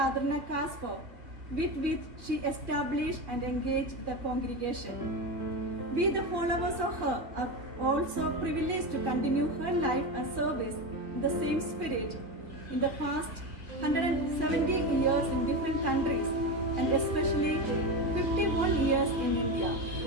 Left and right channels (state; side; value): late; left; 2.2 ms